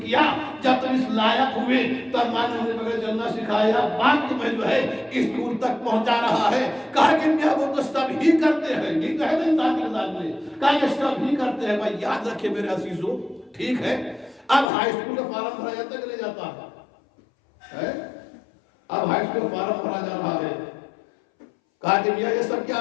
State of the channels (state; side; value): drops out; right; at 14.7 s